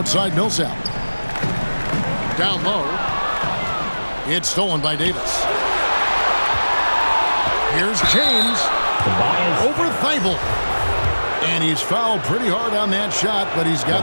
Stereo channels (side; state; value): both; inverted; correlation -1.00